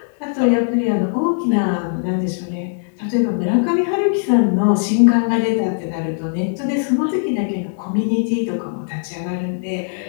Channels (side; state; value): right; silent; 62 dB below the other